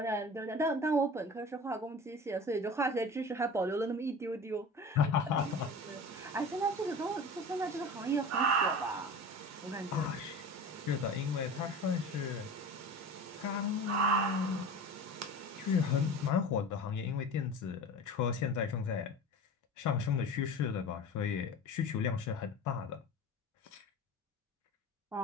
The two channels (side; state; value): both; normal; correlation 0.35